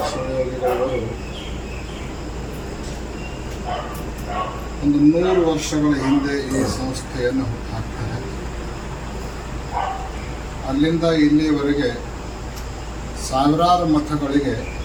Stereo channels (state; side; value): identical; both; correlation 1.00